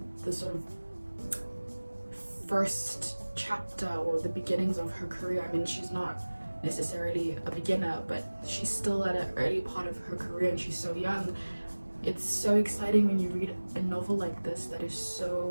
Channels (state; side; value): inverted; both; correlation -1.00